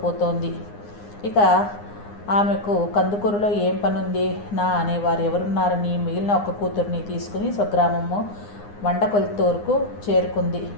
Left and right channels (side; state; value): right; late; 9.7 ms